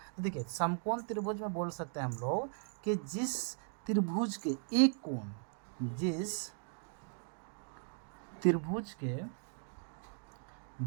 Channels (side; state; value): left; silent; 52 dB below the other